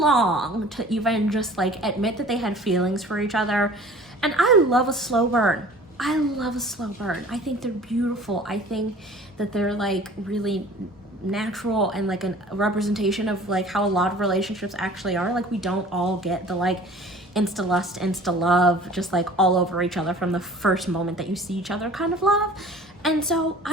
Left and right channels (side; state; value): both; normal; correlation 0.46